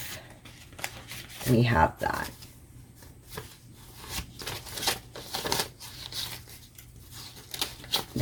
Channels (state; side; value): identical; both; correlation 1.00